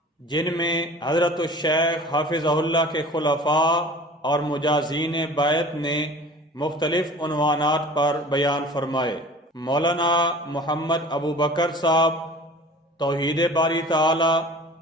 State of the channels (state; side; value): normal; both; correlation 0.43